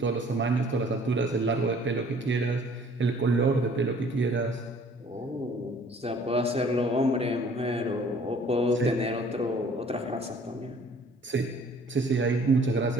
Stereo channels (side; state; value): both; normal; correlation 0.55